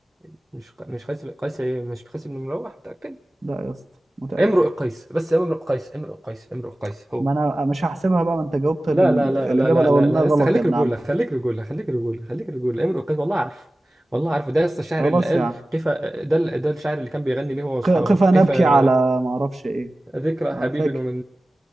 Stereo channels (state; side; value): normal; both; correlation 0.96